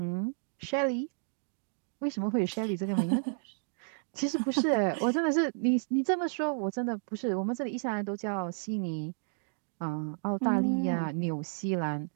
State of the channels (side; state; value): left; silent; digital silence